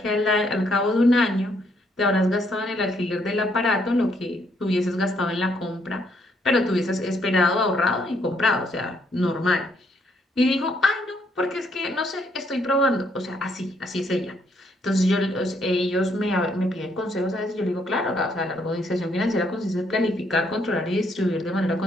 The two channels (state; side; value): normal; both; correlation 0.71